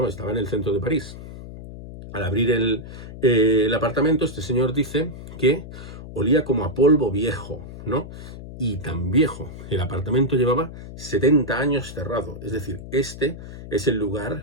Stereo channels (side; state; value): left; noise; hum, 13 dB below the sound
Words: estaba en el centro de París. Al abrir el apartamento, este señor dice que olía como a polvo viejo, ¿no? Y tan viejo. El apartamento llevaba 70 años cerrado. Es decir, este es el